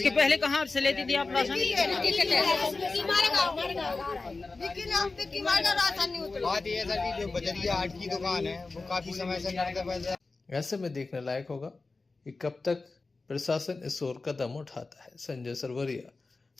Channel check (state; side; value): quieter; right; 3.7 dB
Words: पहले कहाँ से लेती थी आप राशन? बात ये सर की जो बजरिया 8 की दुकान है वो काफी समय से ऐसे में देखने लायक होगा कि कब तक प्रशासन इस ओर कदम उठाता है। संजय सरवरिया,